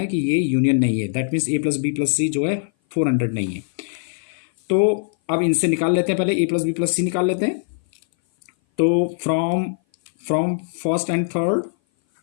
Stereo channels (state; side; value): silent; right; 58 dB below the other